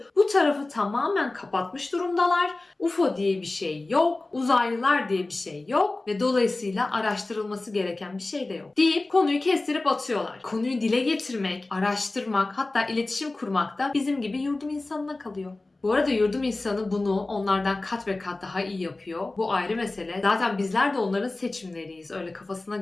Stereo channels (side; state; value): right; quieter; 3.1 dB